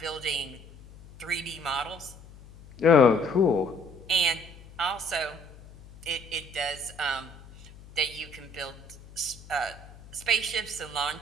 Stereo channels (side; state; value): left; noise; hum, 20 dB below the sound